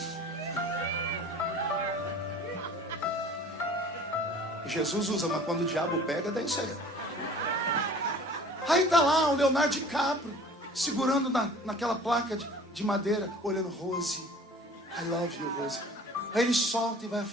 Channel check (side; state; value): both; normal; correlation 0.47